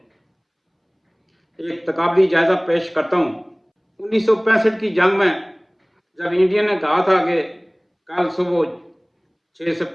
ایک تقابلی جائزہ پیش کرتا ہوں۔ 1965 کی جنگ میں جب انڈیا نے کہا تھا کہ کل صبح 6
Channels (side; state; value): both; identical; correlation 1.00